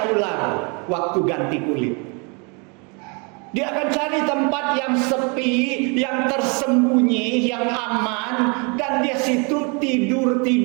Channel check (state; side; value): quieter; left; 33.1 dB